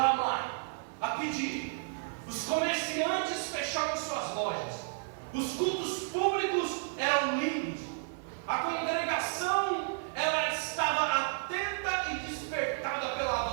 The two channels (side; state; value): left; silent; 56 dB below the other